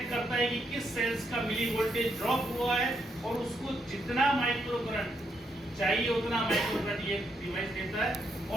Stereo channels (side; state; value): both; normal; correlation 0.78